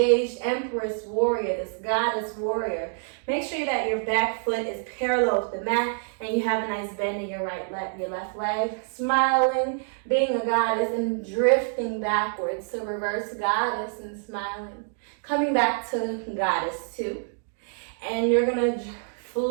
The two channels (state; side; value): silent; left; 61 dB below the other